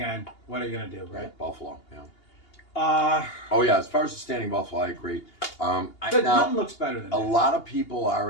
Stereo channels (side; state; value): right; late; 2.8 ms